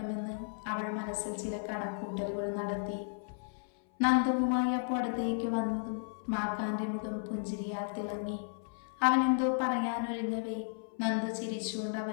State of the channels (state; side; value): silent; right; 55 dB below the other